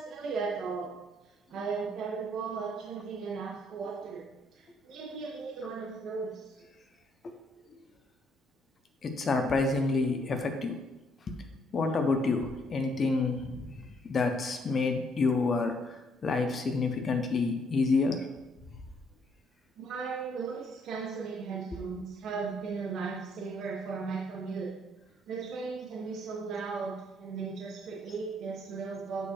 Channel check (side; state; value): both; normal; correlation 0.69